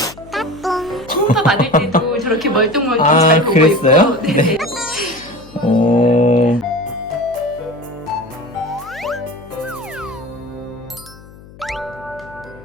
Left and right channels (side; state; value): left; noise; hum, 21 dB below the sound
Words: 초음파 받을 때도 저렇게 멀뚱멀뚱 아, 잘 보고 그랬어요? 있고. 네네. 오.